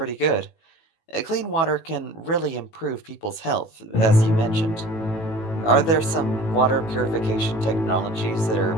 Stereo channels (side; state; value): right; late; 18 ms